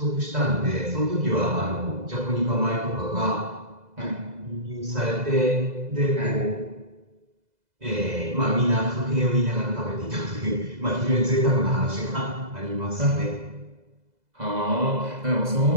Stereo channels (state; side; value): late; left; 2.0 ms